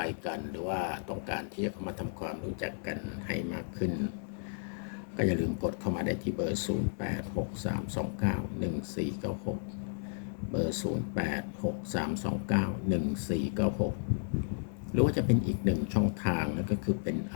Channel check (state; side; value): silent; right; 56 dB below the other